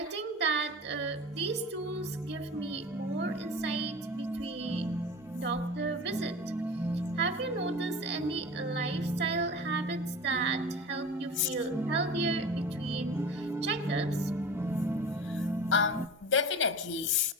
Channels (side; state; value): both; normal; correlation 0.33